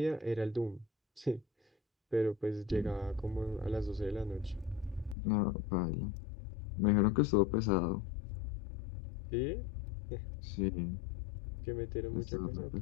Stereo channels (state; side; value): drops out; right; at 5.2 s